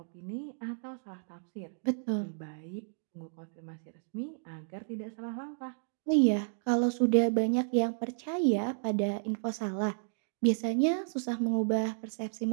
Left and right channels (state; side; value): silent; left; digital silence